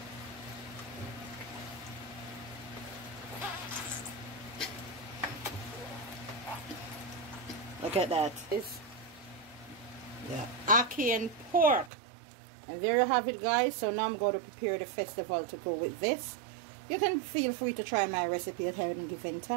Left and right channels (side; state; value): left; drops out; at 11.9 s